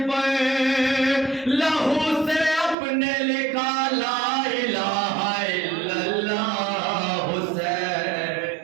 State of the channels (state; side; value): drops out; left; at 2.8 s